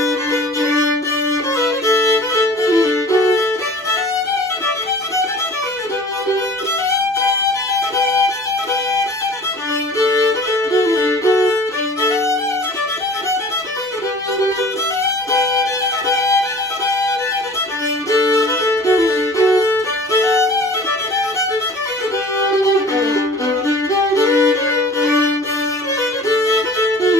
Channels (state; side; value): normal; both; correlation 0.45